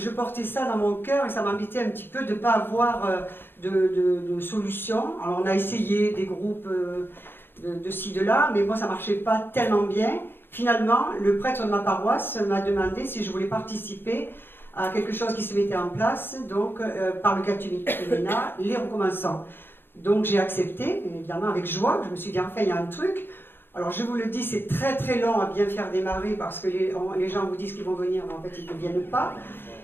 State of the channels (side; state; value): right; late; 0.10 ms